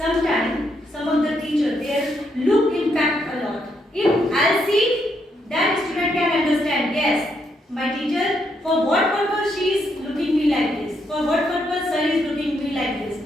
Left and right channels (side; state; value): both; normal; correlation 0.77